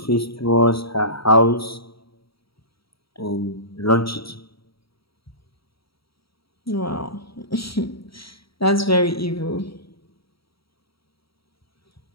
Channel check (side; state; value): right; late; 0.75 ms